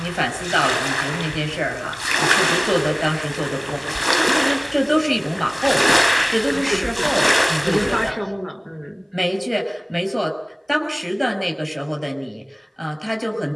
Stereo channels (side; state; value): both; identical; correlation 1.00